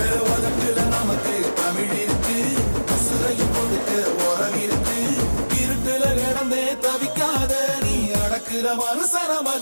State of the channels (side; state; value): both; inverted; correlation -1.00